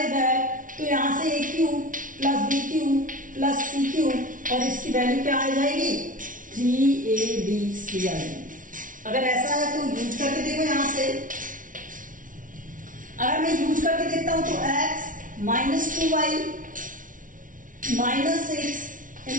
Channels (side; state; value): left; late; 0.38 ms